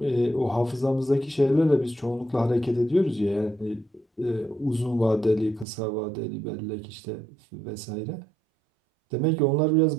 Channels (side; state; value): left; drops out; at 5.7 s